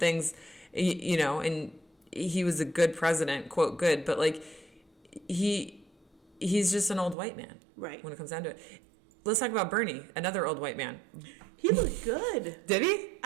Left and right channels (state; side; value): drops out; left; at 7.2 s